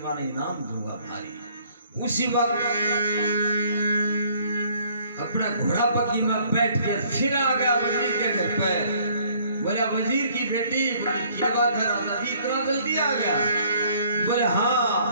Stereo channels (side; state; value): both; inverted; correlation -0.60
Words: बार इनाम दूंगा भारी। उसी वक्त अपना घोड़ा पक्की में बैठ के फिर आ गया वजीर के घर पे। बोला वजीर की बेटी, बोली क्या बात है राजा जी इतना जल्दी आ गया? बोले